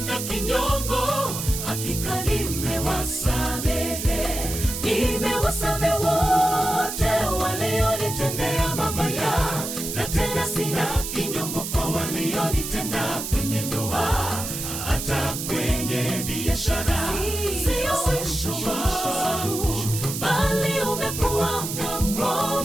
kinyongo. Hakika nimewasamehe, nimewasamehe wote walionitendea mabaya, na tena sina kinyongo kwa walionitenda kwenye ndoa, hata kwenye biashara. Sio mwisho wangu, bali umekuwa mwanzo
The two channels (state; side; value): noise; right; hiss, 5 dB below the sound